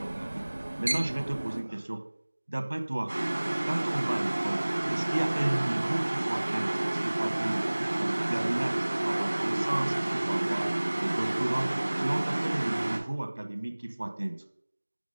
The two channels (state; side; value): inverted; both; correlation -1.00